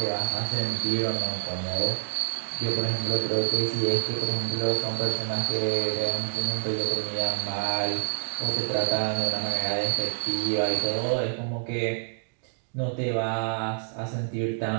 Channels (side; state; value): left; silent; digital silence